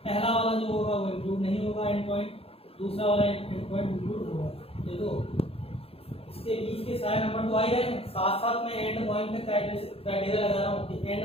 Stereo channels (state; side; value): late; right; 0.28 ms